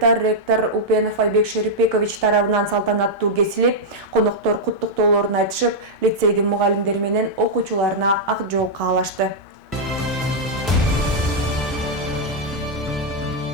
ректор Упенов Айбек Шерипбекович тарабынан салтанаттуу кесилип, коноктор куттуктоолорун айтышып, лицейдин мугалимдери менен окуучуларына ак жол каалашты.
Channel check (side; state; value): both; normal; correlation -0.04